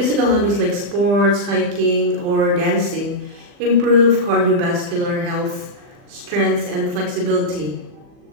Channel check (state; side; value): late; left; 40 ms